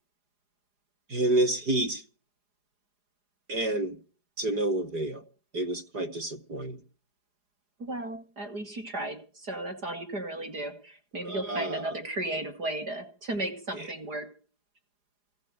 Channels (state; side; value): late; left; 4.9 ms